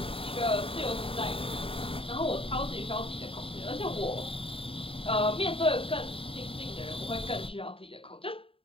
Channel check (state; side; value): late; right; 0.27 ms